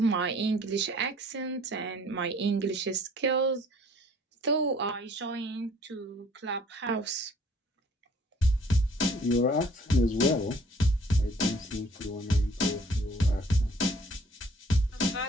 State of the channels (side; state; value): both; normal; correlation 0.56